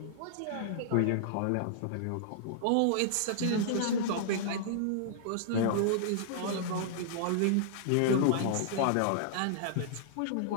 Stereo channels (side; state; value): both; different; correlation -0.01